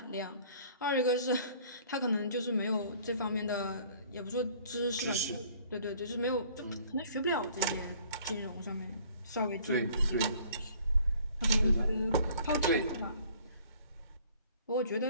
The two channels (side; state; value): both; inverted; correlation -0.54